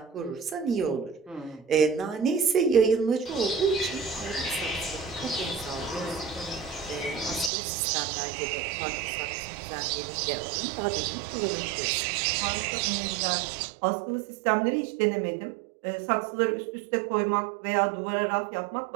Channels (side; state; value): left; drops out; at 7.5 s